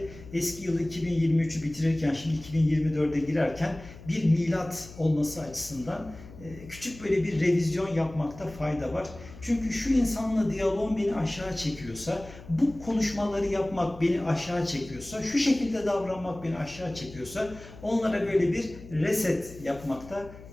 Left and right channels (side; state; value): left; noise; hum, 17 dB below the sound